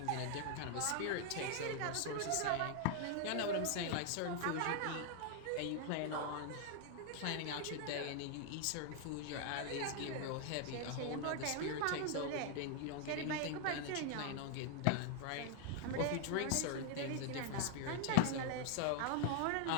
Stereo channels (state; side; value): different; both; correlation 0.00